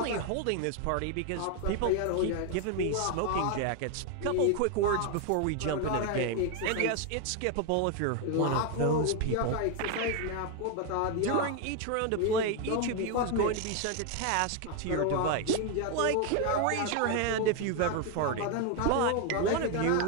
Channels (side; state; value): both; different; correlation 0.01